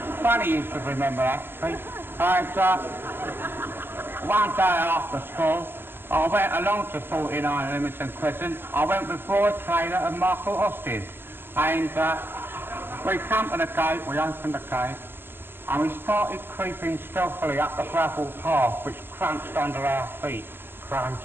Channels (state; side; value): late; left; 0.10 ms